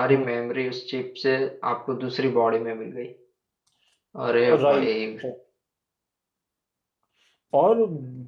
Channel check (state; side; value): identical; both; correlation 1.00